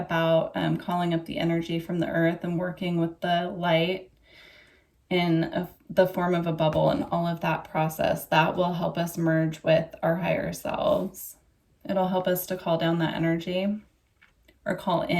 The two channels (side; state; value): both; identical; correlation 1.00